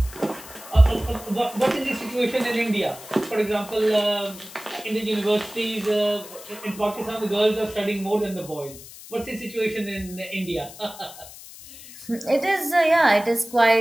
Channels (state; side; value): noise; left; hiss, 16 dB below the sound